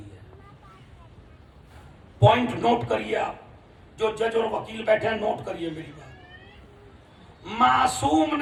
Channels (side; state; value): both; identical; correlation 1.00